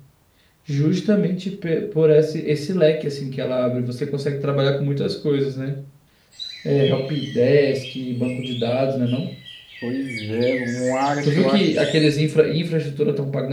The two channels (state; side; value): identical; both; correlation 1.00